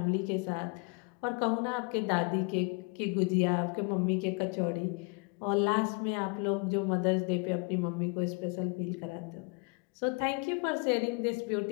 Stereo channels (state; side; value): quieter; right; 31.8 dB